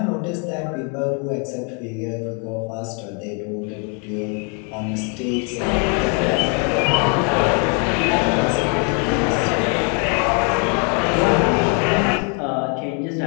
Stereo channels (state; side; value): quieter; right; 36.3 dB